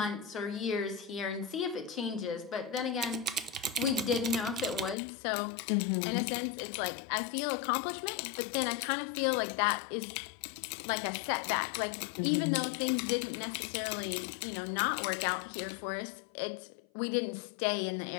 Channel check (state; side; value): drops out; right; at 5.0 s